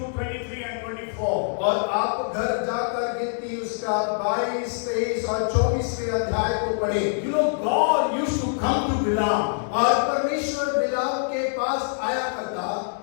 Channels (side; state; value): right; silent; digital silence